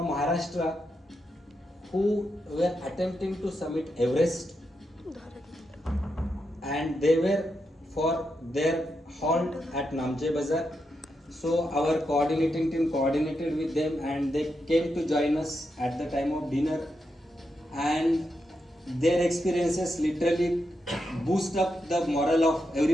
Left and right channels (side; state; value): both; normal; correlation 0.85